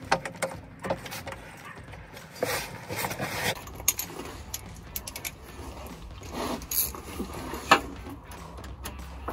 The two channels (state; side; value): identical; both; correlation 1.00